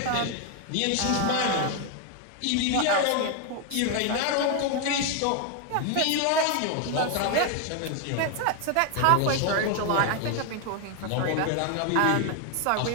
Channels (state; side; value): different; both; correlation 0.01